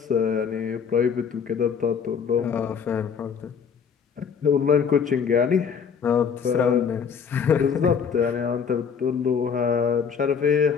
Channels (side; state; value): right; quieter; 6.7 dB